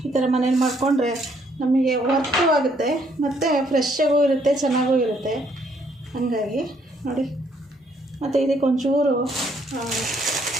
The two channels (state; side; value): normal; both; correlation 0.68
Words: ಈ ಥರ ಮನೇಲಿ ಮಾಡಿಕೊಂಡ್ರೆ ನಮಗೆ ವರ್ಕು ಆಗುತ್ತೆ ಮತ್ತು ಫ್ರೆಶ್ಶಾಗೂ ಇರುತ್ತೆ, ಚೆನ್ನಾಗೂ ಇರುತ್ತೆ. ಹಾಗಾಗಿ ನೋಡಿ. ಮತ್ತು ಇದಕ್ಕೆ ಒಂಚೂರು